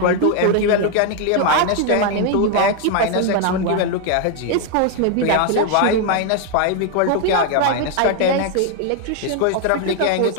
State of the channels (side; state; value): both; different; correlation 0.00